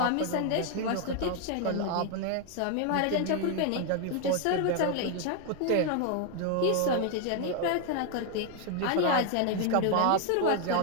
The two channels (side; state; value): both; different; correlation 0.01